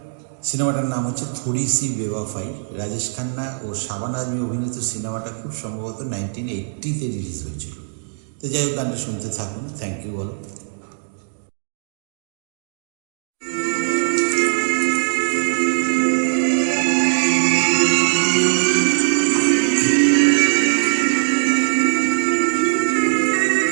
সিনেমাটার নাম হচ্ছে থোড়ি সি বেওয়াফাই। রাজেশ খান্না ও শাবানা আজমি অভিনীত সিনেমাটা খুব সম্ভবত 1980-তে রিলিজ হয়েছিল। তো যাই হোক, গানটা শুনতে থাকুন। থ্যাংক ইউ বলো।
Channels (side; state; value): left; silent; digital silence